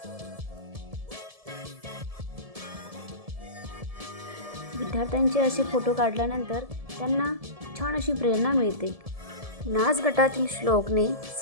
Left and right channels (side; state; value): left; late; 1.7 ms